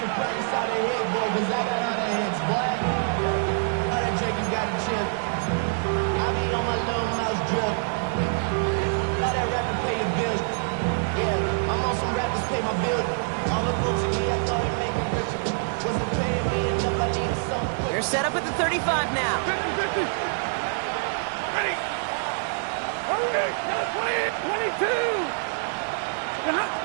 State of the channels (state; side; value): silent; left; digital silence